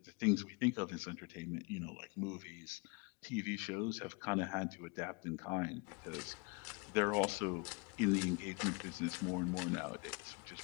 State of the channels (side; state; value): right; quieter; 30.5 dB